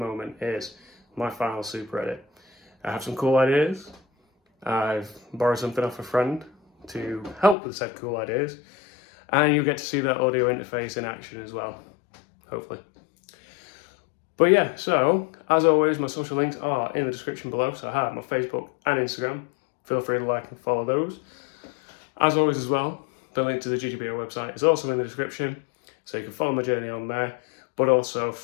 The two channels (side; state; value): right; drops out; at 7.6 s